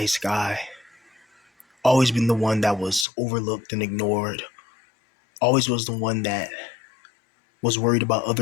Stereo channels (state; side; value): drops out; right; at 3.1 s